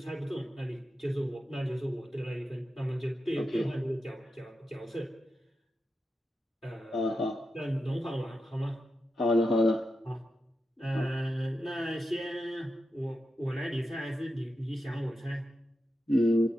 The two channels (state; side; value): normal; both; correlation 0.89